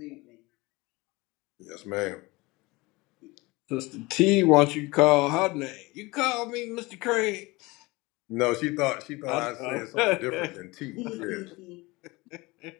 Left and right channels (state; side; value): quieter; right; 22.9 dB